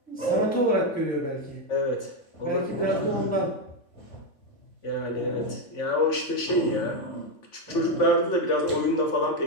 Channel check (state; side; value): late; right; 3.5 ms